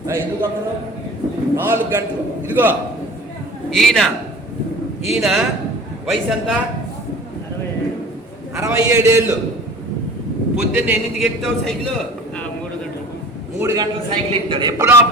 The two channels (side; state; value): both; normal; correlation 0.43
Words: ఎందుకు అక్కడ 4 గంటలు. ఇదిగో ఈయన వయసు ఎంత? 67 ఏళ్ళు. పొద్దున్న ఎన్నింటికి ఎక్కుతావు సైకిల్? 3 గంటలు సైకిల్ ఎక్కుతాడు. ఎప్పుడు